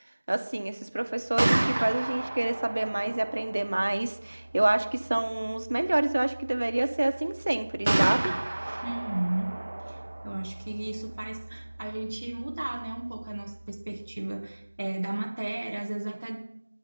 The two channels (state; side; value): inverted; both; correlation -1.00